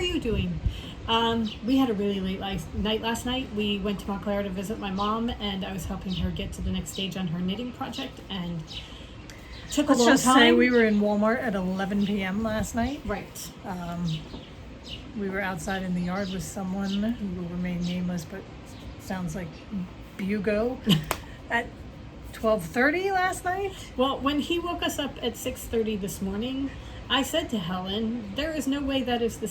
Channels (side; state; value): both; identical; correlation 1.00